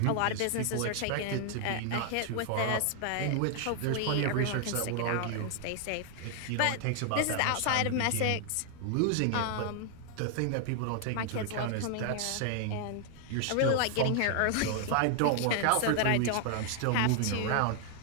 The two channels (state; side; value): different; both; correlation 0.00